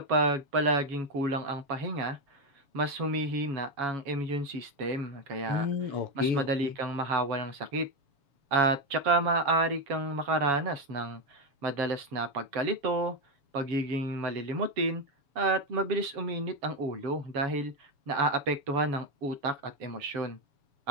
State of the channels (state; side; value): late; left; 7.1 ms